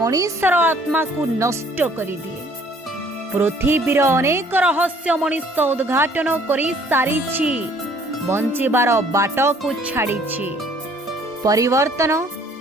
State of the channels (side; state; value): both; normal; correlation 0.58